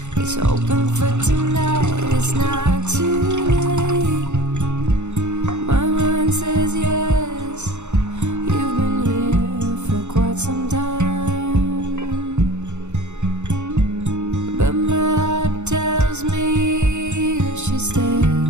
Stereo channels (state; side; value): late; left; 0.83 ms